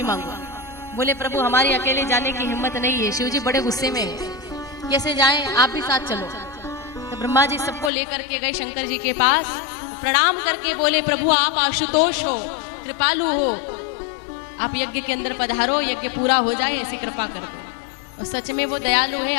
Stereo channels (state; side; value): drops out; right; at 7.9 s